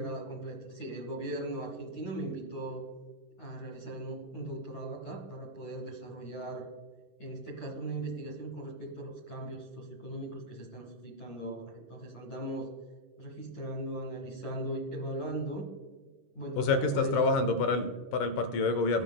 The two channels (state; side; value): late; right; 11 ms